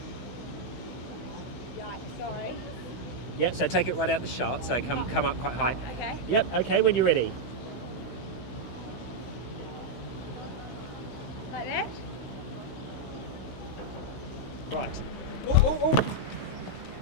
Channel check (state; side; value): late; right; 15 ms